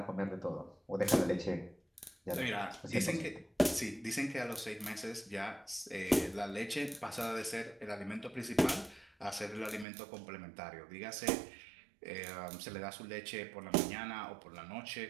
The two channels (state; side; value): drops out; left; at 9.9 s